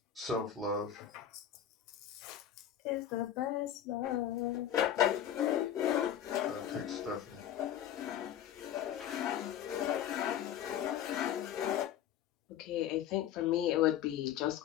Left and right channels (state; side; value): quieter; right; 10.2 dB